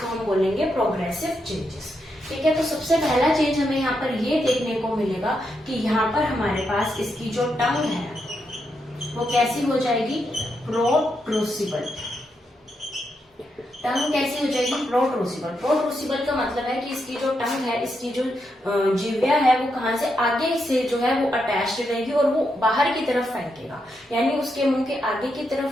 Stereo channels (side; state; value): both; normal; correlation 0.82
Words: हम बोलेंगे प्रोग्रेसिव चेंजेस। ठीक है, तो सबसे पहला चेंज हमें यहाँ पर ये देखने को मिलेगा कि यहाँ पर हमारे पास इसकी जो टंग है वो कैसी हो जाएगी, प्रोट्रूसिबल। टंग कैसी हो जाएगी, प्रोट्रूसिबल। प्रोट्रूसिबल का मतलब है कि इसकी जो टंग है, इसकी जो जिह्वा है वो कहाँ से आगे से जो है वो अटैच्ड रहेगी और वो बाहर की तरफ फेंकेगा, यानी उसके मुंह के आगे की